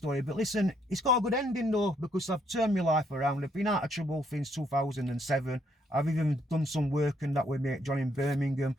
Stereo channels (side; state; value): both; normal; correlation 0.71